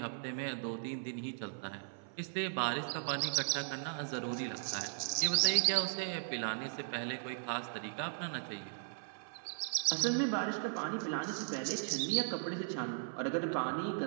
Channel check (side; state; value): left; silent; 53 dB below the other